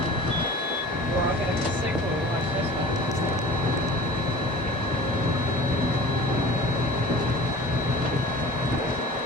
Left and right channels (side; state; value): both; normal; correlation 0.41